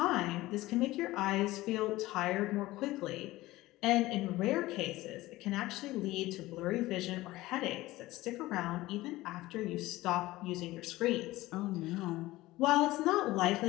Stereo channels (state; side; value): quieter; right; 18.0 dB